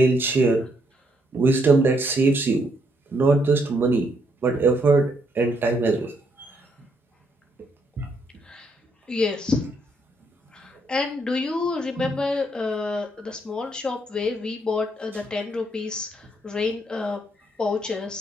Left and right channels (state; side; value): normal; both; correlation 0.73